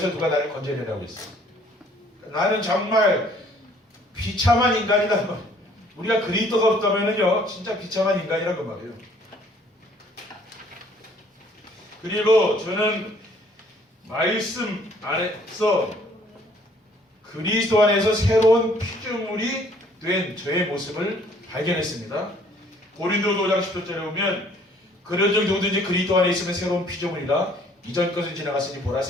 누가 나를 건져내라고 했어요. 나는 정말 비참한 인간이다. 우리가 그리스도가 없다면은요, 진짜 비참한 인간이라고 말이에요. 그리고 저는 말씀 안에서 그리스도 안에서 새로운 피조물이 된 저의 모습을 발견했습니다. 고린도서 5장 10절에 보면 그런 적 누구든지 그리스도 안에 있으면 새로운 피조물이라 이전 것은 지나갔으니 보라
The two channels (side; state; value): both; normal; correlation 0.59